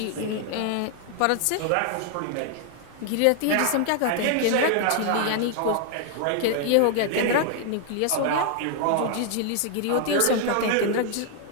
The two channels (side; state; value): both; different; correlation 0.00